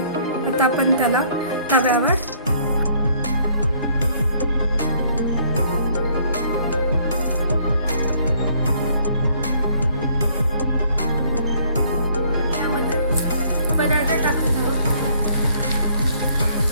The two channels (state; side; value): inverted; both; correlation -0.63